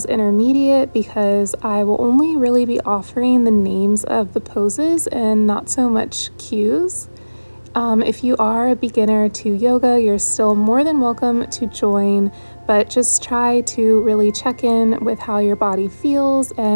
intermediate because I will only really be offering the names of the poses and not so much cues. If you are a beginner to yoga, you're still more than welcome to join, but just try to really check in with how your body feels,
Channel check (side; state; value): both; inverted; correlation -1.00